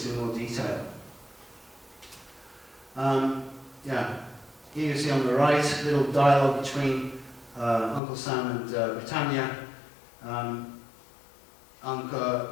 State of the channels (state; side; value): drops out; right; at 8.0 s